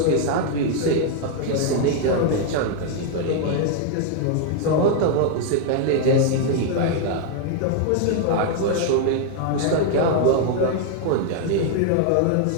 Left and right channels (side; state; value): both; different; correlation 0.00